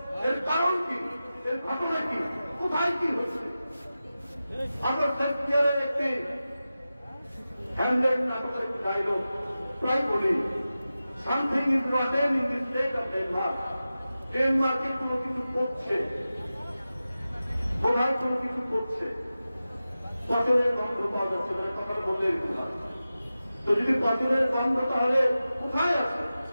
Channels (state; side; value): inverted; both; correlation -0.94